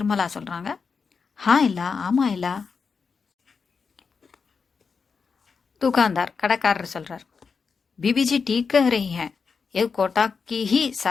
சொல்கிறாங்க, இல்லா ஆமாம் இல்லா. दुकानदार கடைக்காரர் சொல்கிறார், बीबीजी ठीक कह रही हैं, ये कोटा की ही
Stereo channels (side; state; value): right; quieter; 5.4 dB